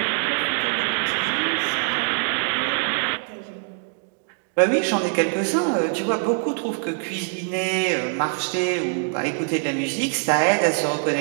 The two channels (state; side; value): silent; left; 56 dB below the other